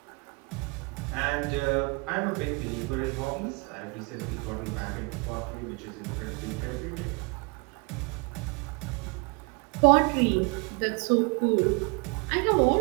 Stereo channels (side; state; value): left; quieter; 30.9 dB